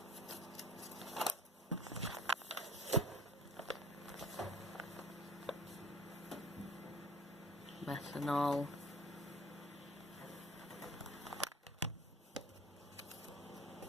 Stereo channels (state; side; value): normal; both; correlation 0.47